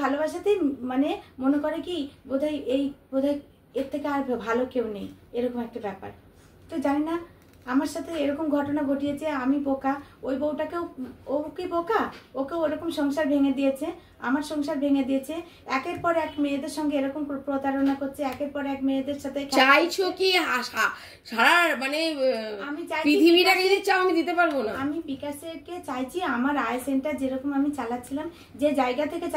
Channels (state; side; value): identical; both; correlation 1.00